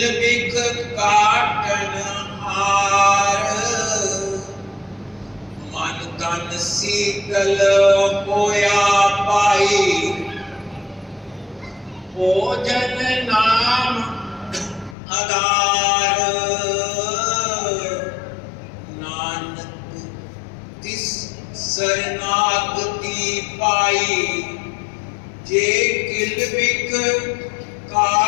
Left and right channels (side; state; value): right; drops out; at 15.0 s